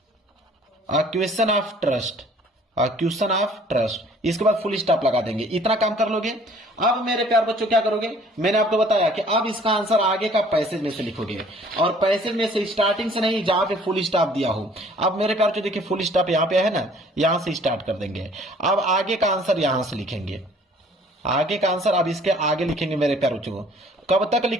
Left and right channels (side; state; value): both; normal; correlation 0.55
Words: ऑफ ट्रस्ट, इसके बाद फुल स्टॉप लगा देंगे। इतना काम कर लोगे। अब मेरे प्यार बच्चों क्या करोगे, मैंने आपको बताया कि अब इसका आंसर आगे का पैसेज में से लिखोगे, और पैसेज में से स्टार्टिंग से नहीं, जहां पे फुल स्टॉप दिया हो। अब मेरे प्यार बच्चों देखिए फुल स्टॉप यहाँ पे है ना, यहां से स्टार्ट कर देंगे। अब आगे का आंसर यहां से लिखेंगे, आगे का आंसर अब इसके आगे लिखेंगे मेरे प्यार बच्चों। कब तक